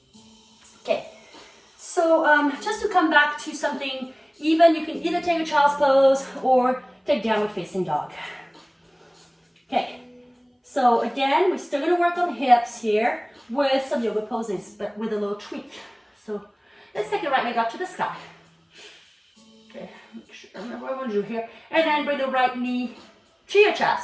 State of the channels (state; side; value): identical; both; correlation 1.00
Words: Okay, so just to come back to something even, you can either take a child's pose or take downward facing dog. Okay, so again, we're still gonna work on hips here with some yoga poses, but with a little tweak. So let's take the right leg up to the sky. Okay, make sure I remember what I want to do here. And then bring the right knee to your